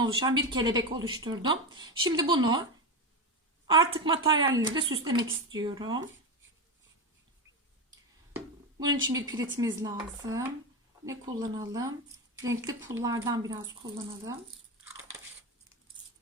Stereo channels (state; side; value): normal; both; correlation 0.16